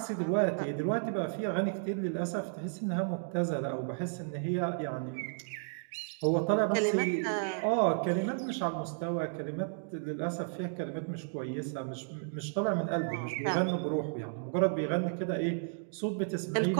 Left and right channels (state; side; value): silent; left; digital silence